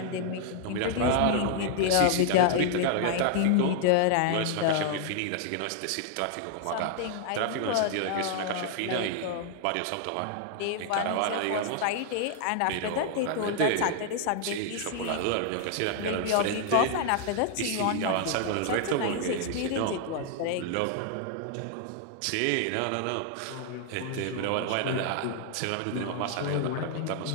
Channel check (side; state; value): both; different; correlation 0.00